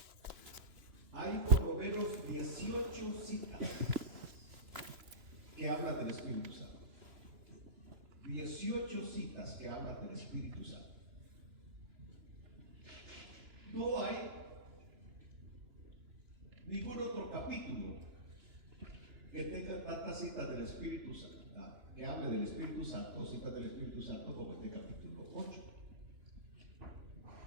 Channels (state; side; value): late; left; 3.0 ms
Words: hay por lo menos 18 citas que hablan del Espíritu Santo. 18 citas que hablan del Espíritu Santo. No hay ningún otro capítulo que tenga tantas citas del Espíritu Santo, que hable del Espíritu Santo, citas del Espíritu Santo, como este capítulo 8.